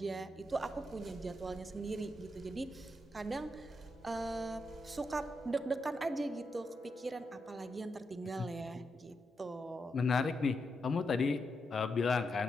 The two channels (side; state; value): both; normal; correlation 0.84